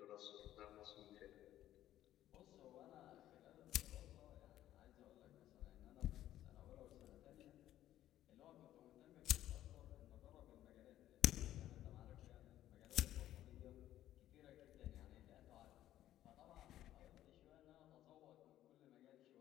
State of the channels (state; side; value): quieter; right; 13.0 dB